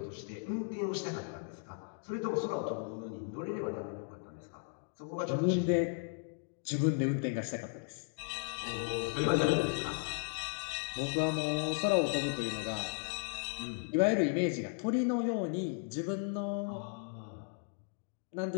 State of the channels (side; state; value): right; silent; 54 dB below the other